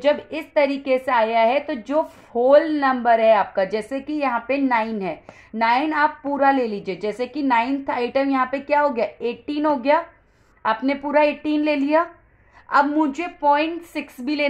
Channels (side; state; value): both; identical; correlation 1.00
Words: इस तरीके से आया है तो जो होल नंबर है आपका, जैसे कि यहाँ पे 9 है, 9 आप पूरा ले लीजिए। जैसे कि 9th आइटम यहाँ पे क्या हो गया 18 हो गया, आपने पूरा 18 ले लिया। अब मुझे 0.6 भी